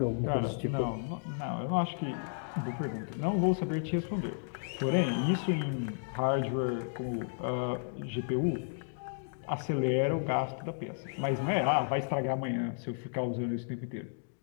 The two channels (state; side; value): silent; right; digital silence